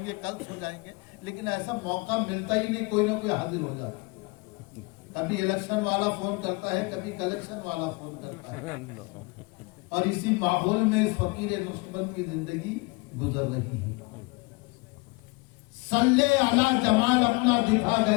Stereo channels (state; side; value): quieter; right; 27.1 dB